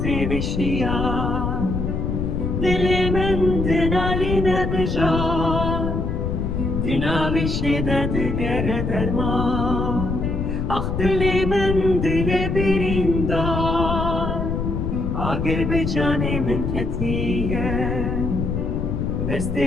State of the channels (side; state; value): left; noise; rumble, 1 dB below the sound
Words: بشیا دل من دنالی ندجا دنا بشده دگر درما آخ دل من دل بریندار اگر به جان من کتیه دست